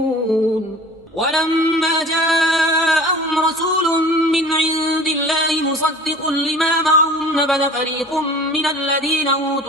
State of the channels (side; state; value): both; normal; correlation 0.43